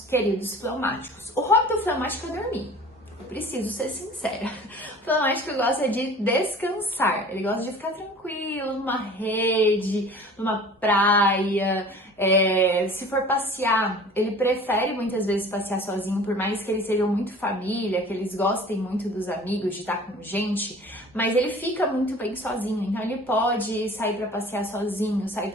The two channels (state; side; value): normal; both; correlation 0.44